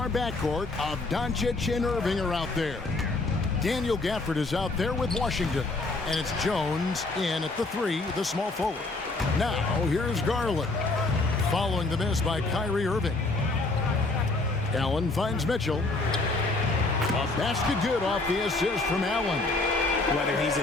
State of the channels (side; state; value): right; quieter; 3.3 dB